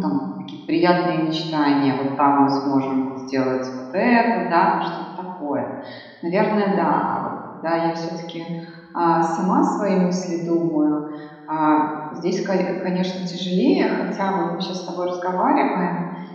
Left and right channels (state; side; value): identical; both; correlation 1.00